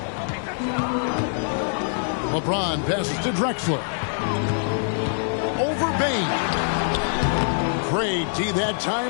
LeBron passes to Drexler. Over Bane. Great D that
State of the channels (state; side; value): silent; right; digital silence